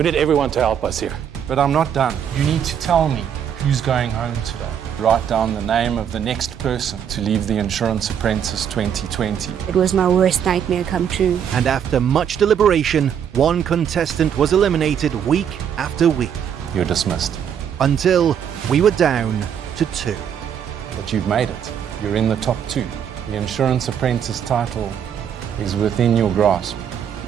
need everyone to help us here. But I'm not done. You need to tell me who's going home today. Write down the name of the next person to leave the Insurance Apprentice 2020. It was my worst nightmare come true. And after much deliberation, one contestant was eliminated week after week. You're dismissed. Until we were down to 2. But you've made it. You're in the top 2. The Insurance Apprentice title is within your grasp.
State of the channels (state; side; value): quieter; left; 8.5 dB